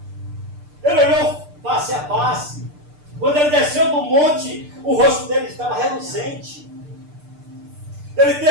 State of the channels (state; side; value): late; left; 6.7 ms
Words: Ele olhou face a face. Quando ele desceu do monte, o rosto dele estava reluzente. Ele